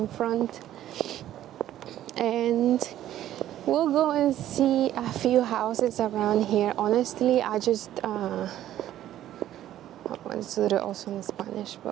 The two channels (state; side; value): quieter; left; 12.5 dB